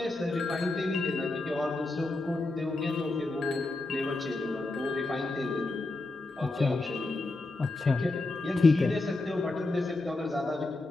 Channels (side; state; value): right; quieter; 3.0 dB